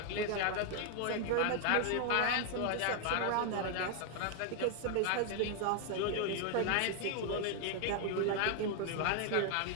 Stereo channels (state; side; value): different; both; correlation 0.00